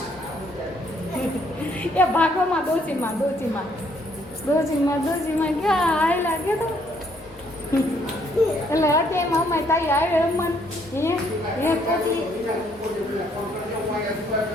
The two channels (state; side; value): normal; both; correlation 0.68